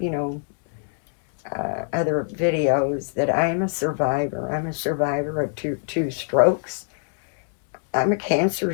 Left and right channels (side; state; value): right; silent; digital silence